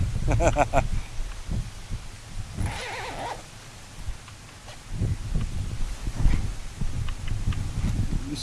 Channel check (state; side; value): identical; both; correlation 1.00